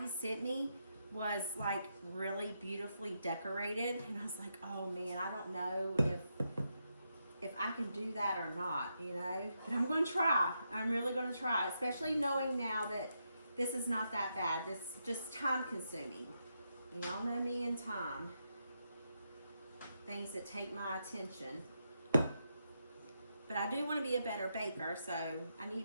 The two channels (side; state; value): both; inverted; correlation -0.83